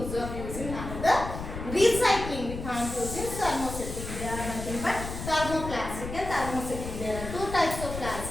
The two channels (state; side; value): noise; left; rumble, 8 dB below the sound